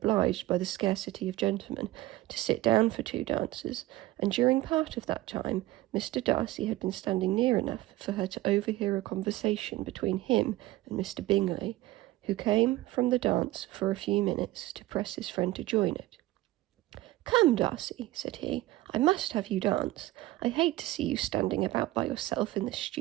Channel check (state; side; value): quieter; left; 17.2 dB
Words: by the scarcity of gentlemen to sit down for 2 dances, and during part of that time Mr. Darcy had been standing near enough for her to overhear a conversation between him and Mr. Bingley, who came from the dance for a few minutes to press his friend to join it. "Come, Darcy," said he, "I must have you dance. I hate to see you standing about by yourself in this